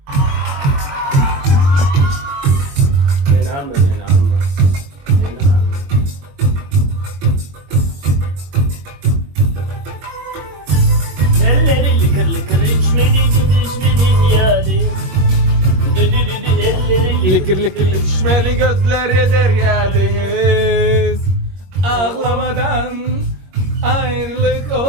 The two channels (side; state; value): left; late; 22 ms